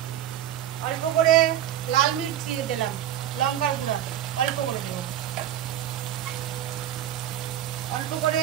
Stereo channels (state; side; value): quieter; left; 11.6 dB